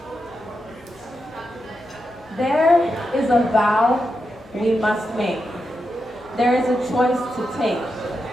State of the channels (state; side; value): normal; both; correlation 0.87